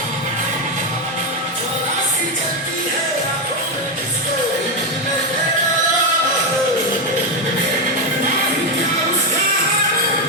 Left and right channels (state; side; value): normal; both; correlation 0.06